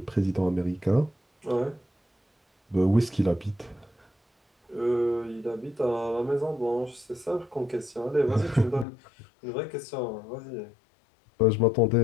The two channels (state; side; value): drops out; right; at 8.8 s